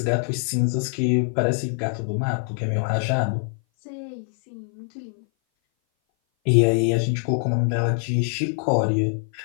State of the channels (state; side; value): silent; right; 58 dB below the other